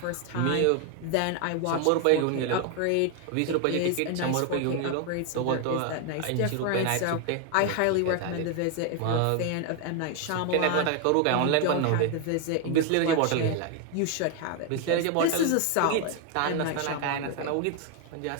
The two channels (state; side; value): different; both; correlation 0.01